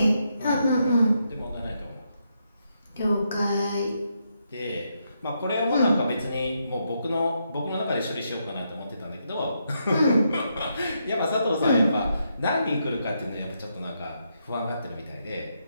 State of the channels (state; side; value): inverted; both; correlation -0.80